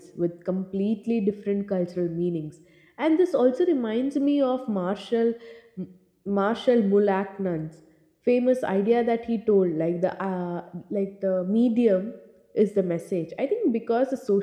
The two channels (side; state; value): both; identical; correlation 1.00